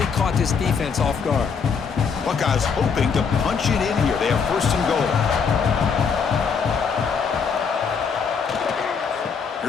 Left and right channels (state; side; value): quieter; right; 6.0 dB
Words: caught this defense off guard. Buckeyes hoping to punch it in here. They have first and goal.